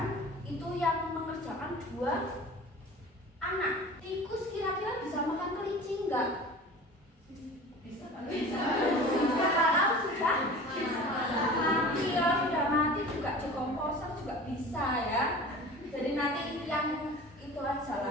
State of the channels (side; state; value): both; normal; correlation 0.39